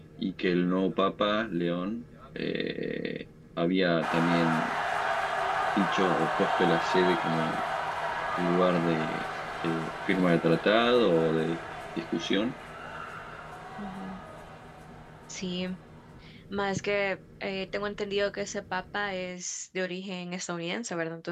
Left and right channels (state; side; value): identical; both; correlation 1.00